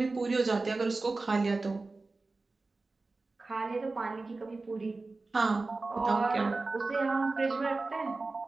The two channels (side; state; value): left; quieter; 3.5 dB